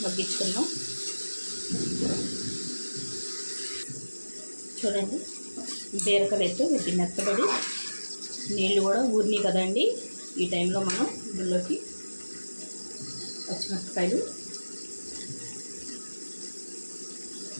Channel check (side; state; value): both; inverted; correlation -1.00